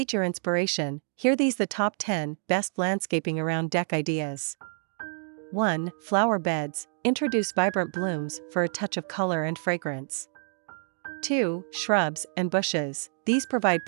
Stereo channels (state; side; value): silent; left; 59 dB below the other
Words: your inspiration, here these the top 10 best landscaping around deck ideas. 1. Flower beds, introduce vibrant blooms for a touch of color and fragrance. 2. Shrubs and bushes, these provide